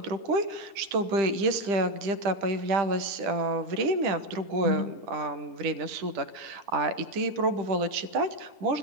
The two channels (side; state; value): left; late; 10 ms